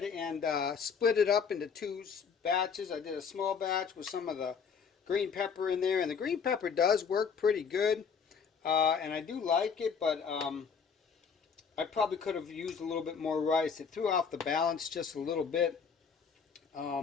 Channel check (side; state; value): right; quieter; 6.2 dB